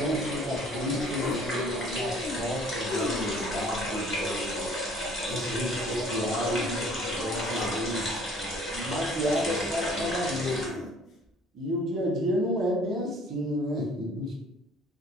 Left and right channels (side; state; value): both; normal; correlation 0.54